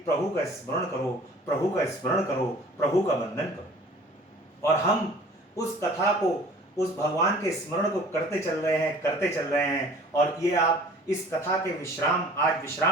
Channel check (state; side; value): normal; both; correlation 0.48